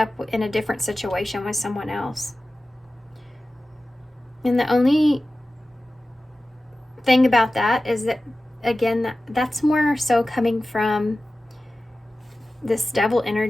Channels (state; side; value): normal; both; correlation 0.95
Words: in a different situation with someone else. And the only thing about that is that, again, that's more so coming from this devil